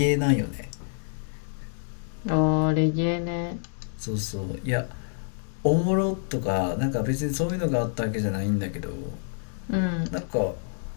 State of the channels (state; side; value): silent; right; 60 dB below the other